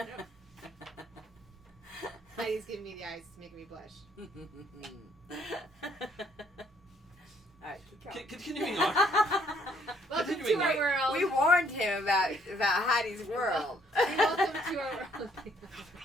Heidi's giving me the eyes to make me blush. Alright, keep going. Continuing on. Welcome Continuing to our on. world. We warned him about Heidi's world. Welcome to our world.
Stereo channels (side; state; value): both; normal; correlation 0.66